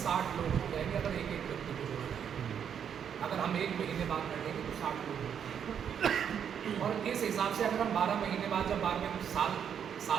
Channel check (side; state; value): left; quieter; 8.2 dB